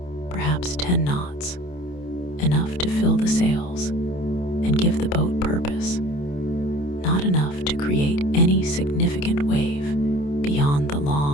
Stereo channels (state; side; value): late; right; 28 ms